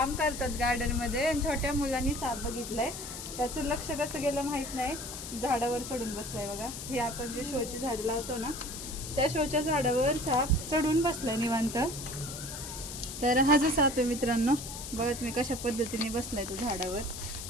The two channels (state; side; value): noise; left; hiss, 9 dB below the sound